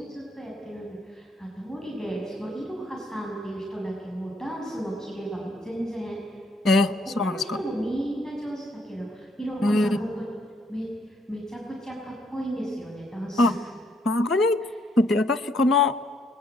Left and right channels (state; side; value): normal; both; correlation 0.70